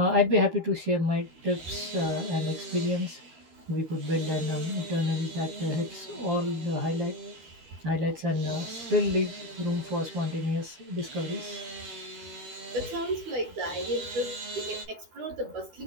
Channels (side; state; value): left; late; 13 ms